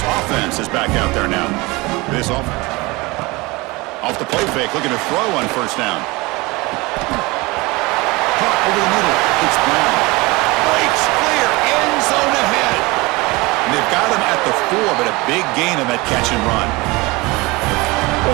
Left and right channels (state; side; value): quieter; left; 23.5 dB